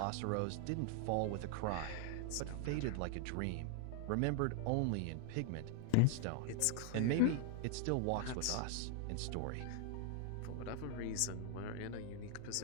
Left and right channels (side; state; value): both; different; correlation 0.00